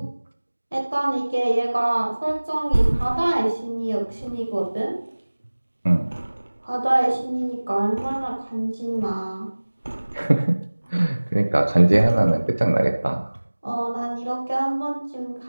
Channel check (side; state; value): both; inverted; correlation -1.00